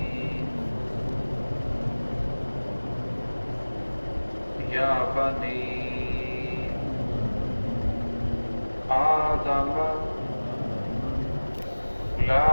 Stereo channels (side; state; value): both; inverted; correlation -1.00